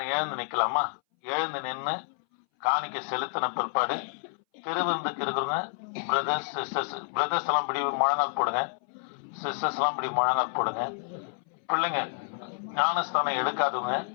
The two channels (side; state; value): right; silent; 59 dB below the other